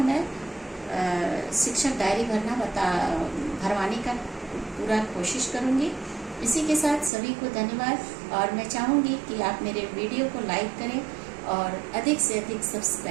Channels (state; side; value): drops out; left; at 7.1 s